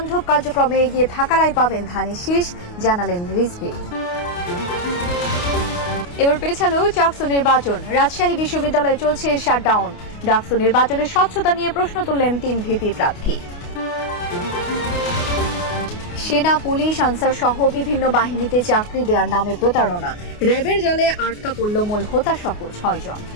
কার্যক্রমে এগিয়ে থাকারাই পাবেন ধানের শীষ, জানালেন রিজভী। এবার পেছালো চাকসু নির্বাচন। রাজশাহী বিশ্ববিদ্যালয়ে চলছে শাটডাউন। ডাকসু নির্বাচনের স্বচ্ছতা নিয়ে প্রশ্ন তুললেন 3 ভিপি প্রার্থী। সেনা, পুলিশ, আনসার সহ বিভিন্ন বাহিনীতে চাকরি দেওয়ার নামে প্রতারণা। র্যাবের জালে আটকা পড়ল মূল হোতা সহ 6 জন।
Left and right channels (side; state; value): right; late; 28 ms